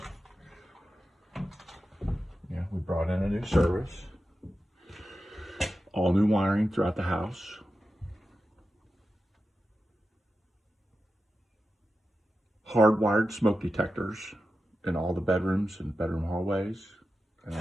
we brought in a new service, all new wiring throughout the house. Hardwired smoke detectors in all the bedrooms and bedroom hallways and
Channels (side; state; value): both; normal; correlation 0.91